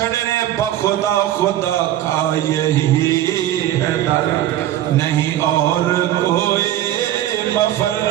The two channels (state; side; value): quieter; left; 12.9 dB